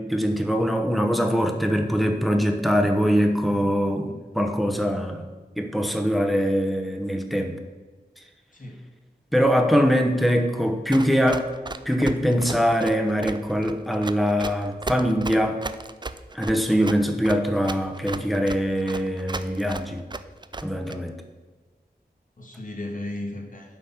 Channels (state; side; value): normal; both; correlation 0.89